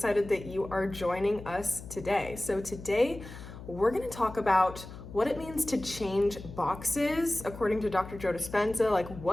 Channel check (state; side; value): noise; left; hum, 13 dB below the sound